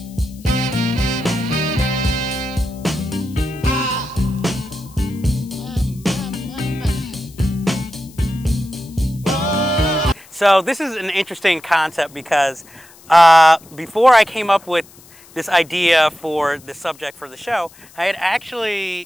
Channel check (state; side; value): noise; left; hiss, 24 dB below the sound